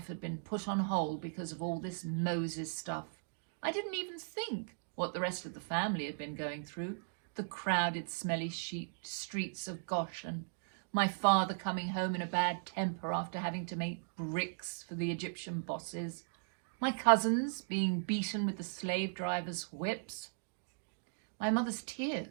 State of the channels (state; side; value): silent; left; digital silence